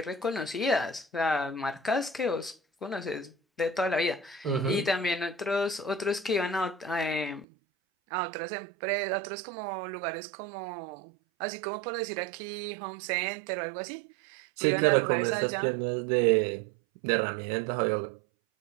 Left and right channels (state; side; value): drops out; left; at 7.5 s